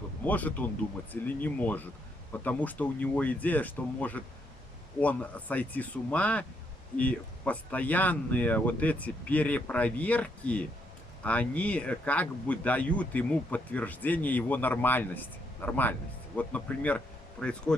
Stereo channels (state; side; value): normal; both; correlation 0.75